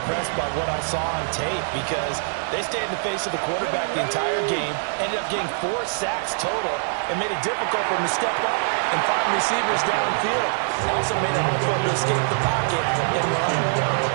by what I saw on tape because they stayed in the face of the quarterback the entire game, ended up getting 4 sacks total, and made it difficult for him to step up and find receivers downfield. Also made it hard for him to escape the pocket and run.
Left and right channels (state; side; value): silent; left; digital silence